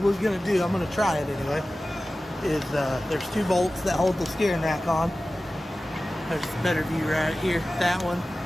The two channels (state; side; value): normal; both; correlation 0.96